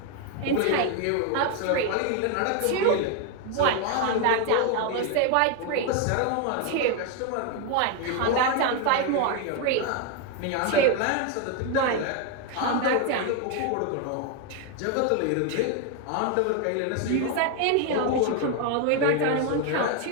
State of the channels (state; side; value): different; both; correlation 0.01